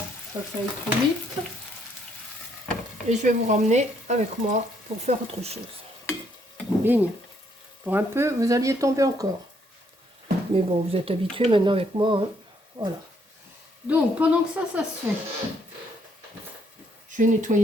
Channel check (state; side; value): normal; both; correlation 0.70